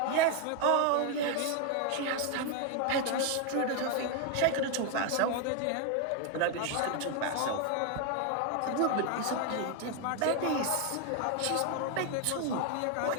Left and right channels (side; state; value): both; different; correlation 0.01